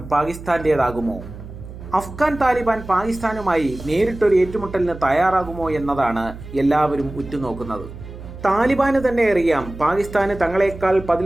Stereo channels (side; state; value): right; noise; hum, 14 dB below the sound